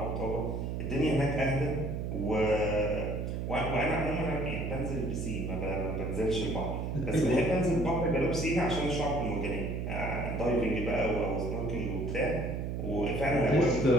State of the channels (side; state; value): right; noise; hum, 3 dB below the sound